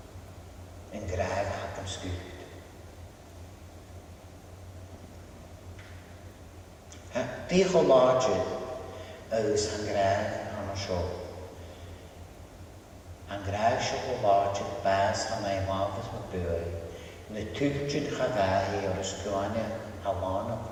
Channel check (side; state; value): both; identical; correlation 1.00